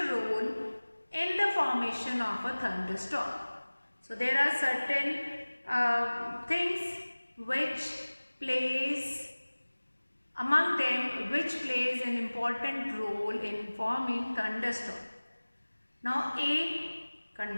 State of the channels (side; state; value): both; inverted; correlation -1.00